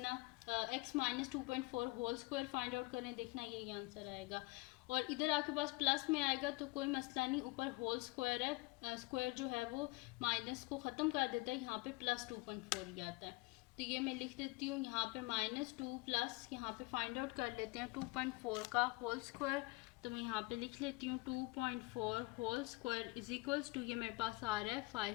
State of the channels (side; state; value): right; quieter; 24.3 dB